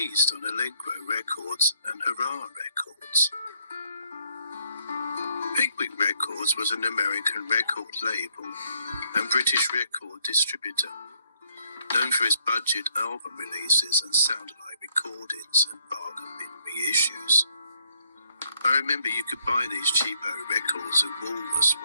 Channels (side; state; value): both; inverted; correlation -0.69